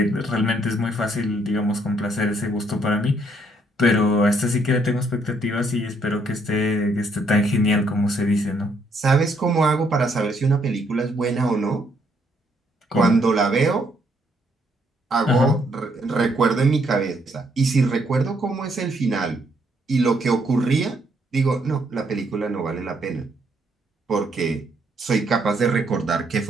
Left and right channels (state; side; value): normal; both; correlation 0.71